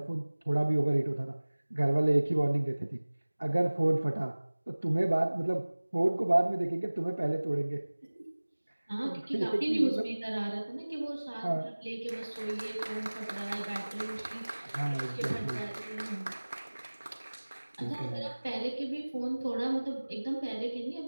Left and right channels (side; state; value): both; inverted; correlation -1.00